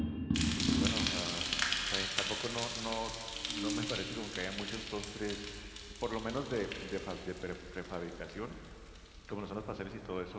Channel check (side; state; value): both; identical; correlation 1.00